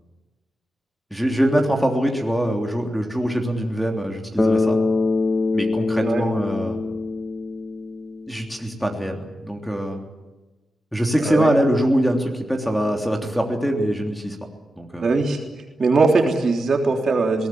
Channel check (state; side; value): normal; both; correlation 0.90